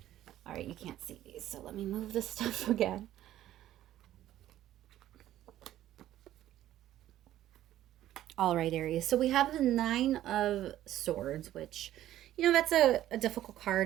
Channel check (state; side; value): quieter; left; 13.1 dB